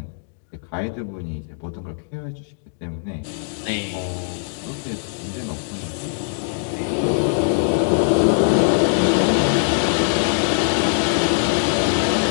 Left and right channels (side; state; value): right; silent; digital silence